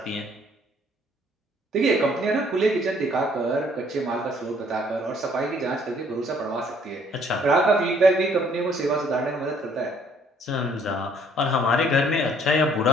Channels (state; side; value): normal; both; correlation 0.62